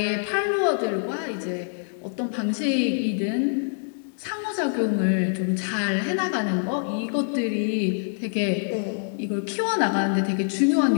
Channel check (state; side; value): silent; right; digital silence